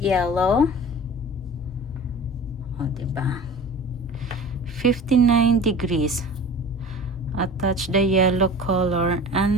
O, diba? 59 degrees. Attach the yellow color.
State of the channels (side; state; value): both; normal; correlation 0.39